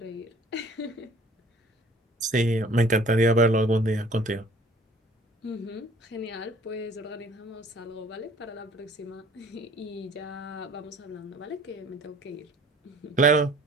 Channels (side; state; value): both; normal; correlation 0.53